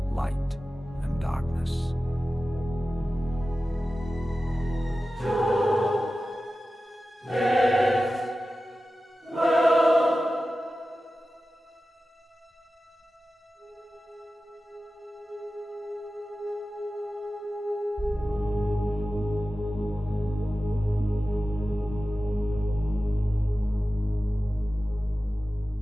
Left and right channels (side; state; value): both; normal; correlation 0.94